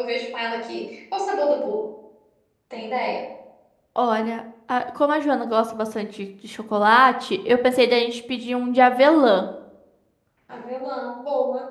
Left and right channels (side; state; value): both; identical; correlation 1.00